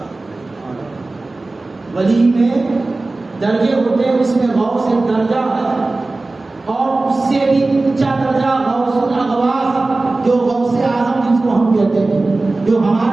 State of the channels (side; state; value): left; quieter; 3.2 dB